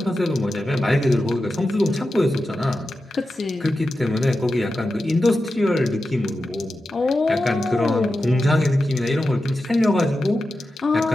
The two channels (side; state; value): both; normal; correlation 0.91